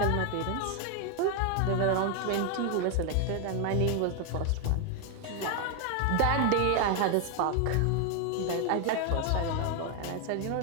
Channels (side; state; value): both; different; correlation 0.01